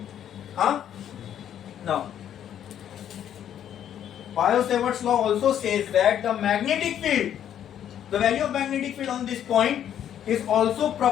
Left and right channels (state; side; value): quieter; right; 10.1 dB